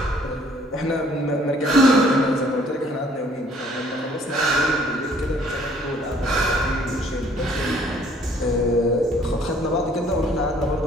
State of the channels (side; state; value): both; normal; correlation 0.59